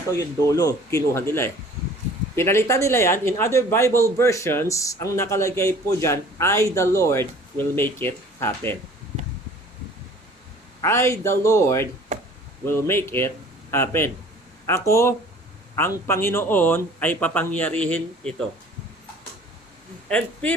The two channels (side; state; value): both; normal; correlation 0.49